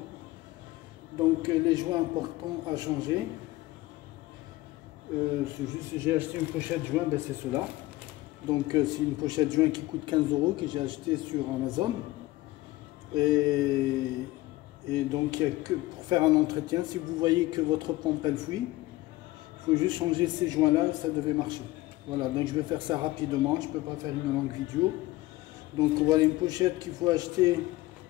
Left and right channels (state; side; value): quieter; right; 18.3 dB